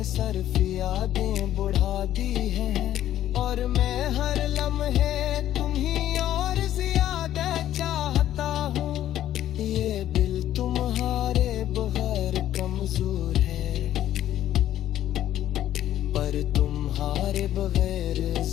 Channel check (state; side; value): quieter; right; 12.3 dB